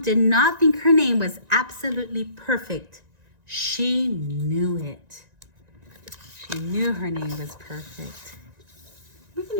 did not think her name was absolutely perfect. She knew it. She knew her name was perfect. We're going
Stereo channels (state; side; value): late; left; 1.9 ms